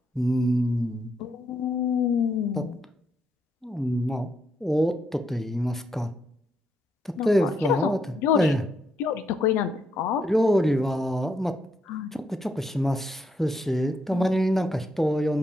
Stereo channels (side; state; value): both; normal; correlation 0.77